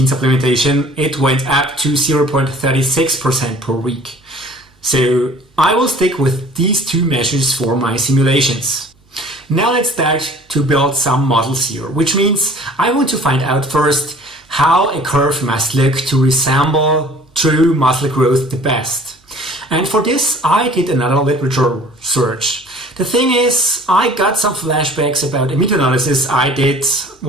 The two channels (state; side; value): normal; both; correlation 0.49